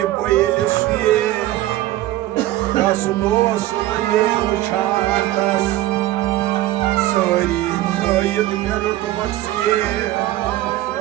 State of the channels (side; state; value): left; quieter; 15.3 dB